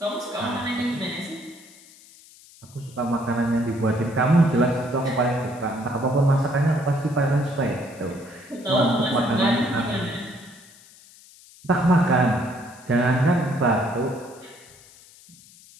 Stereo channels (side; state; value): left; noise; hiss, 24 dB below the sound